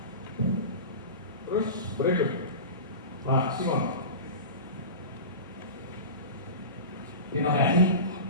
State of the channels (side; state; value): both; inverted; correlation -0.31